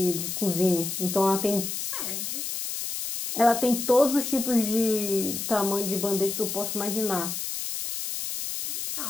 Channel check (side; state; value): left; noise; hiss, 4 dB below the sound